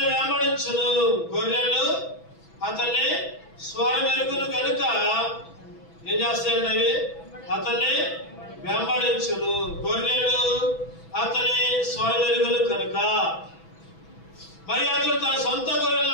వెంబడించును. గొర్రెలు అతన్ని స్వరమెరుగును కనుక ఏం చేస్తాయండి? అవి అతన్ని వెంబడించును. గొర్రెలు అతని స్వరమెరుగును కనుక. మరి అతను తన సొంత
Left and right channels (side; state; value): right; late; 6.1 ms